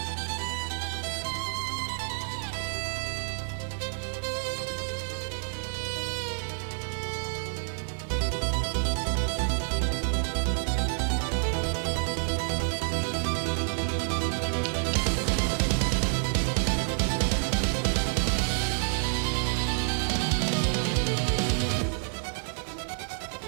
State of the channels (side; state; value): left; silent; 59 dB below the other